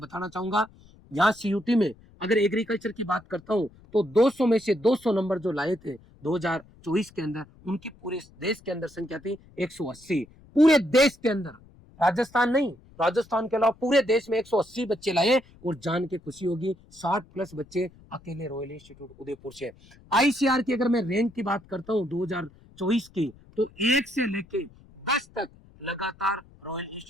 चाहूंगा यहाँ सीयूटी में अगर एग्रीकल्चर की बात करता हूँ तो 200 में से 200 नंबर जो लाए थे 2024 के अंदर, उनकी पूरे देश के अंदर संख्या थी 180। पूरे देश के अंदर, राजस्थान नहीं, राजस्थान के अलावा पूरे देश में 180 बच्चे लाए और जान के खुशी होगी 60+ बच्चे अकेले रॉयल इंस्टीट्यूट उदयपुर से। आईसीआर की अगर मैं रैंक की बात करता हूँ 2024 की, तो 1 से लेके 10 तक लगातार रॉयल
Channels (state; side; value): noise; left; rumble, 25 dB below the sound